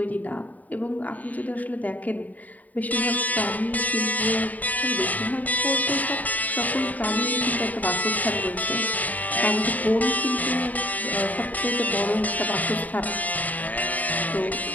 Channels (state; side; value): late; right; 0.076 ms